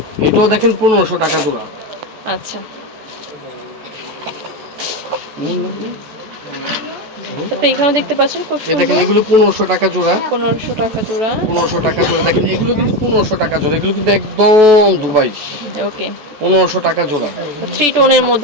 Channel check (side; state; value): left; late; 14 ms